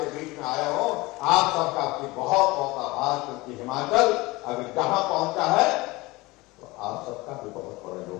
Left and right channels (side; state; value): right; quieter; 21.9 dB